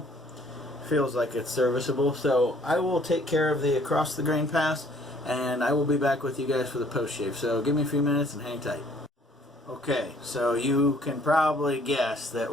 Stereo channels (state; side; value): normal; both; correlation 0.60